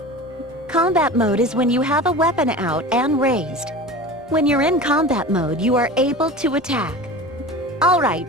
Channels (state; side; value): normal; both; correlation 0.34